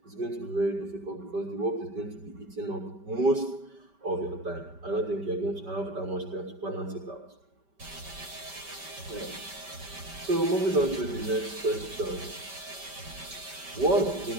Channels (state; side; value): late; left; 5.1 ms